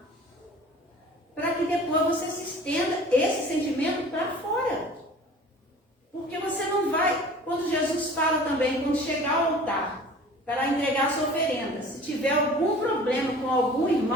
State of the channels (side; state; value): both; normal; correlation 0.45